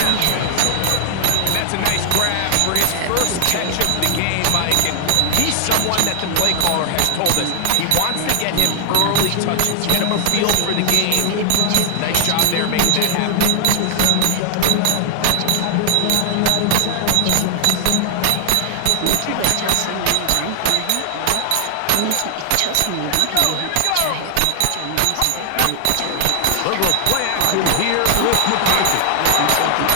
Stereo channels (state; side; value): different; both; correlation 0.00